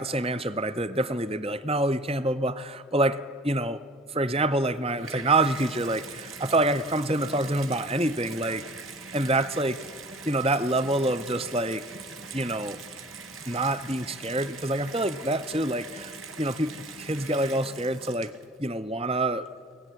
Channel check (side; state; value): both; normal; correlation 0.44